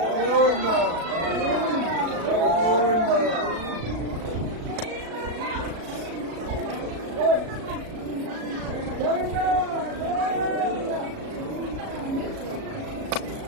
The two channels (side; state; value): left; late; 36 ms